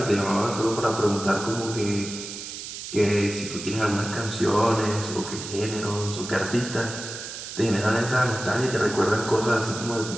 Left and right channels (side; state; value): right; noise; hiss, 9 dB below the sound